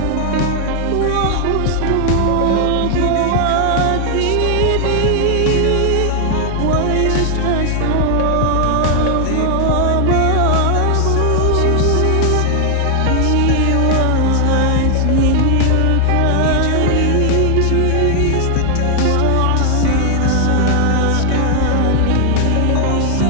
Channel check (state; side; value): different; both; correlation 0.00